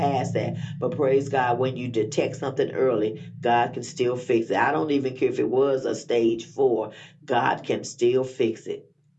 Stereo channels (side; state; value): both; identical; correlation 1.00